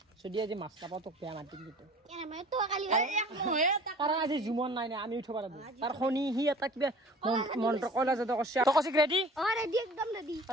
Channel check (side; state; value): both; normal; correlation 0.45